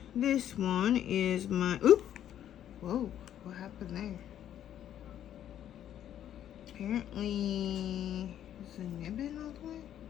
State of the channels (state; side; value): quieter; right; 10.7 dB